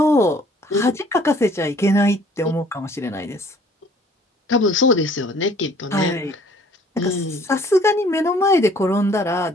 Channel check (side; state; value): both; normal; correlation 0.56